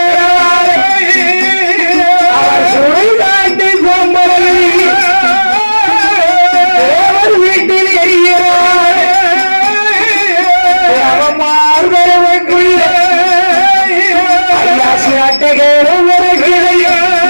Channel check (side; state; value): both; inverted; correlation -1.00